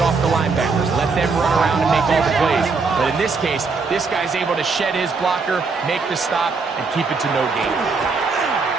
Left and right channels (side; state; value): left; quieter; 4.5 dB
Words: the linebackers. Let them run around and make all the plays. But in this case, this guy's able to shed his blocker, make the stop, and keep it to no gain.